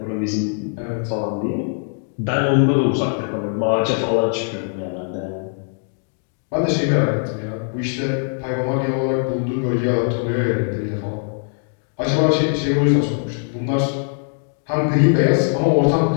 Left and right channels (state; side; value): silent; right; 57 dB below the other